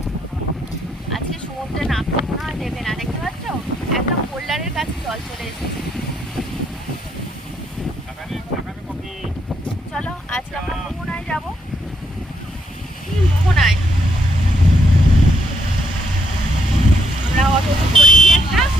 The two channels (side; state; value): both; normal; correlation 0.74